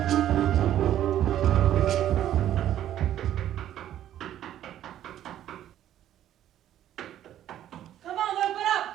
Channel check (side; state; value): left; quieter; 11.7 dB